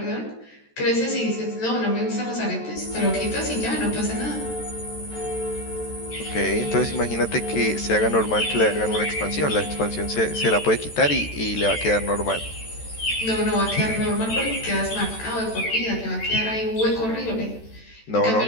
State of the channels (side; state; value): right; late; 13 ms